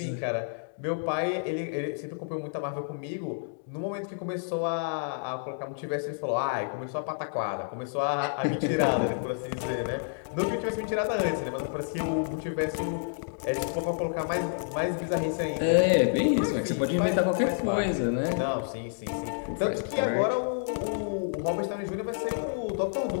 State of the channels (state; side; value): silent; right; digital silence